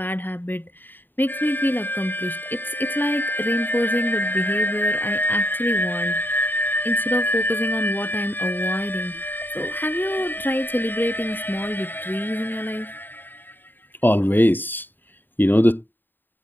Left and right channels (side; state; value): right; late; 0.092 ms